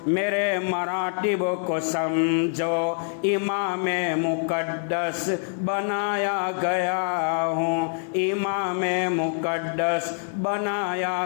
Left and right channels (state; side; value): silent; right; 62 dB below the other